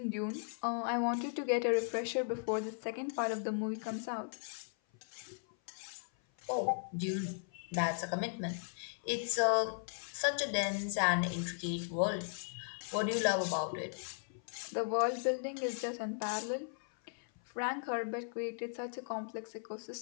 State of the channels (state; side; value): silent; right; 53 dB below the other